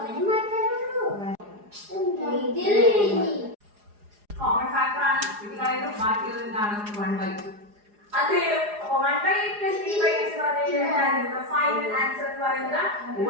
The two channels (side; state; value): left; late; 4.8 ms